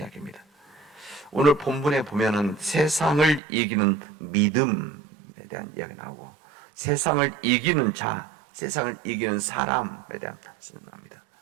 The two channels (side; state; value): left; drops out; at 3.4 s